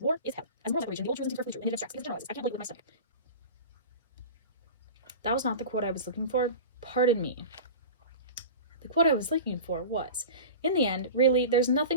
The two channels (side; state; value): both; inverted; correlation -0.33